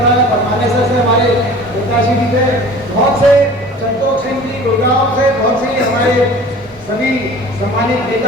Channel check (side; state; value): both; normal; correlation 0.43